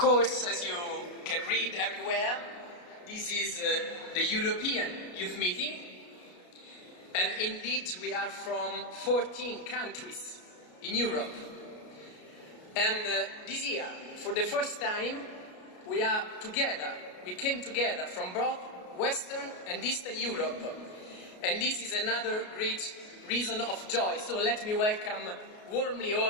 as you can read everywhere, this is the European Youth Meeting, and indeed we are from 14 countries in Europe. And this year, for the first time, we are together. We came together from both Western and Eastern Europe. And this is another great reason of joy. So let me welcome warmly all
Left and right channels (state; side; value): late; right; 33 ms